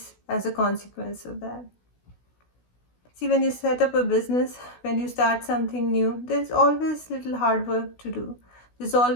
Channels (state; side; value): late; right; 16 ms